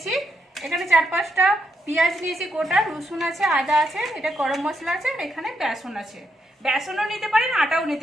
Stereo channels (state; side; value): normal; both; correlation 0.79